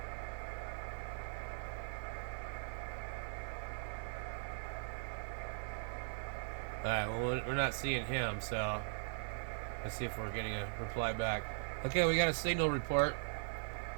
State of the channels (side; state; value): left; silent; digital silence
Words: Alright, well, we're not seeing him, so let's see if we're getting a reply back. Okay, we got a signal report.